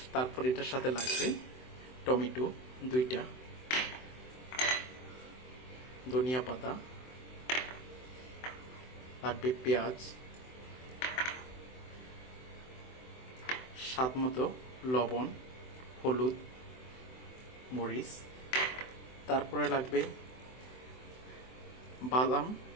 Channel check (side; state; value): right; late; 24 ms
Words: তারপর এটার সাথে লাগবে টমেটো 2টা, ধনিয়া পাতা লাগবে, পেঁয়াজ, স্বাদ মতো লবণ, হলুদ, মরিচ। তারপরে লাগবে বাদাম,